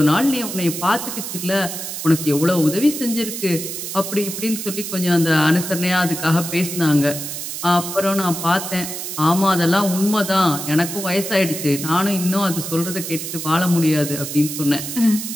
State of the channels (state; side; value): noise; right; hiss, 6 dB below the sound